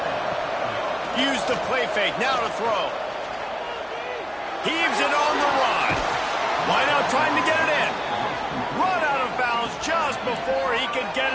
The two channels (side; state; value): both; identical; correlation 1.00